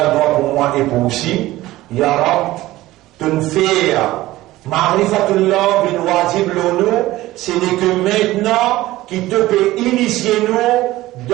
doit pour moi et pour aussi, Ya Rab, tunfir, Ma'rifatullah bin wajib l'onu, ce n'est que maintenant qui te peut initier nous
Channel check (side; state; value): left; quieter; 17.0 dB